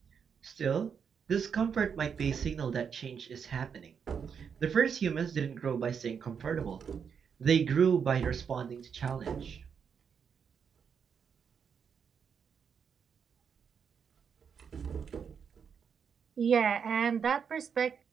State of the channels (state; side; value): quieter; left; 6.9 dB